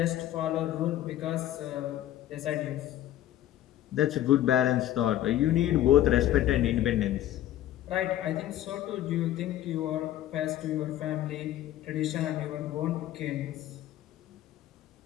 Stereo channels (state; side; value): quieter; right; 12.9 dB